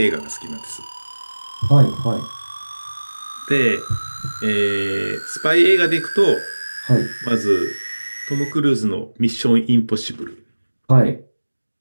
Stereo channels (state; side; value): inverted; both; correlation -1.00